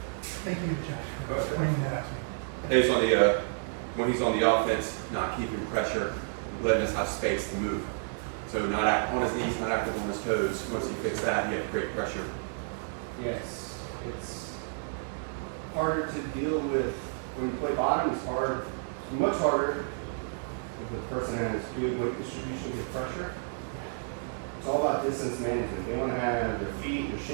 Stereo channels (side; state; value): left; silent; digital silence